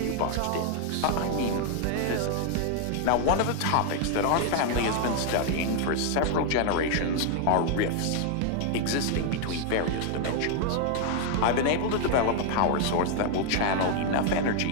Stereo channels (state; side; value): different; both; correlation 0.00